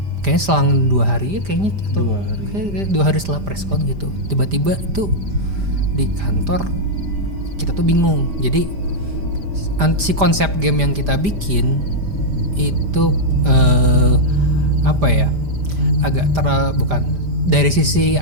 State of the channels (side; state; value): left; late; 5.0 ms